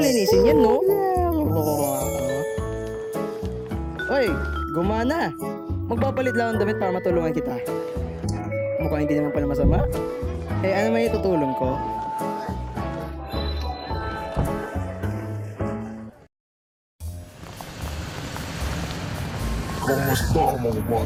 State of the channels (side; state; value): both; identical; correlation 1.00